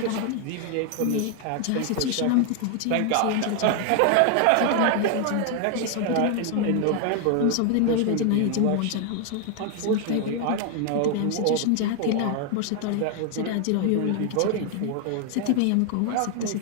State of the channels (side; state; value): both; different; correlation 0.01